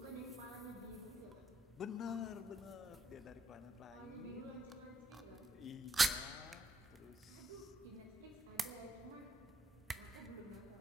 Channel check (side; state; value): both; normal; correlation 0.76